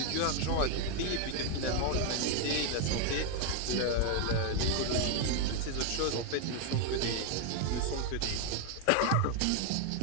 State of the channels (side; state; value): both; different; correlation 0.01